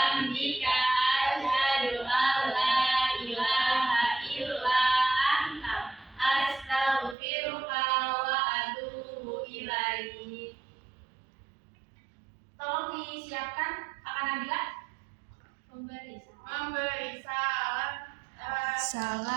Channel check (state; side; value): drops out; left; at 7.2 s